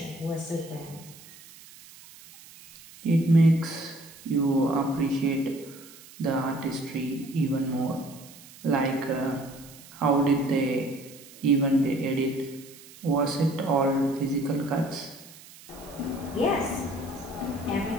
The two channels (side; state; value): right; noise; hiss, 20 dB below the sound